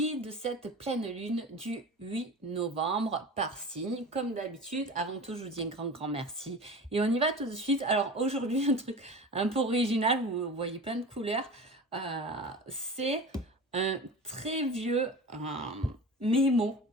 de cette pleine lune du 8 novembre par signe. Comme d'habitude, avant tout, je vous dis un grand merci. Et on y va tout de suite. Alors aujourd'hui, un truc un peu original, vous voyez plein de couleurs. C'est un très vieux mémo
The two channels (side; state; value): both; normal; correlation 0.34